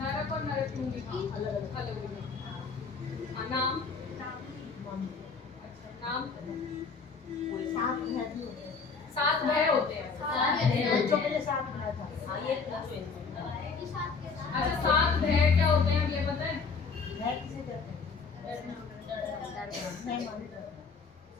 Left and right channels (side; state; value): right; quieter; 5.0 dB